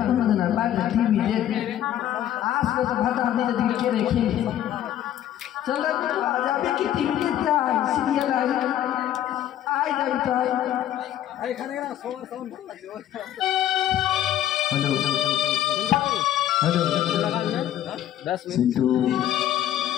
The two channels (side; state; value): right; quieter; 11.7 dB